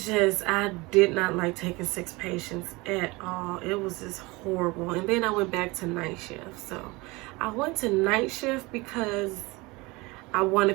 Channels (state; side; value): quieter; left; 23.8 dB